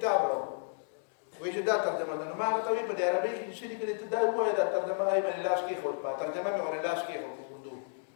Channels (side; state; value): right; silent; digital silence